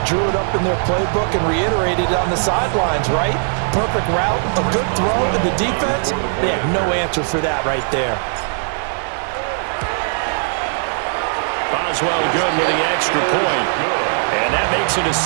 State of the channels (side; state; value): left; silent; 67 dB below the other